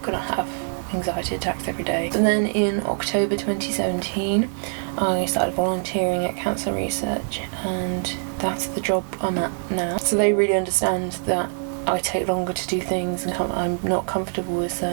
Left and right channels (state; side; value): silent; left; digital silence